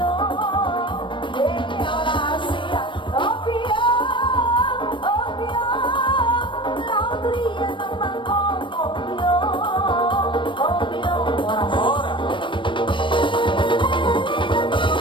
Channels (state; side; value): late; right; 0.24 ms